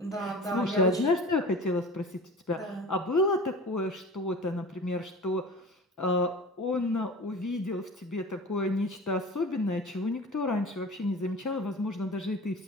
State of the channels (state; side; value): normal; both; correlation 0.37